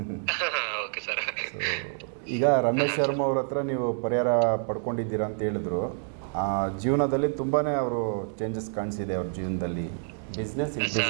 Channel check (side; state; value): left; silent; 60 dB below the other